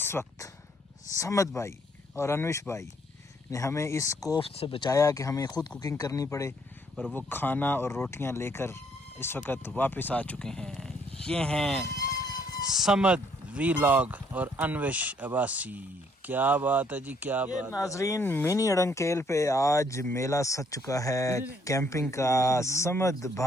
वक्त समद भाई और अनविश भाई ने हमें इस कोफ्त से बचाया कि हमें ख़ुद कुकिंग करनी पड़े, और वो खाना और रोटियां लेकर इस वक्त वापस आ चुके हैं। ये हैं समद वीलॉग और अनविश अब्बासी। क्या बात है जी, क्या बात। नाजरीन मिनी अड़ंकेल पे आज मेला सज चुका है कैंपिंग का। समद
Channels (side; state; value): both; normal; correlation 0.67